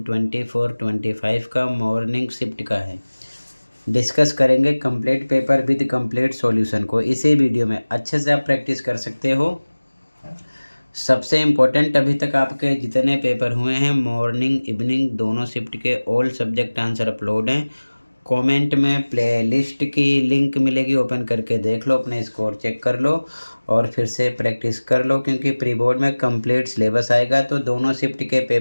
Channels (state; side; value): inverted; both; correlation -1.00